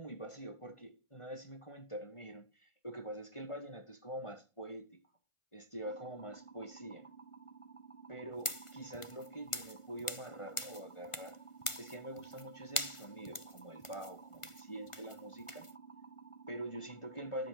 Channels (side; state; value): right; late; 1.4 ms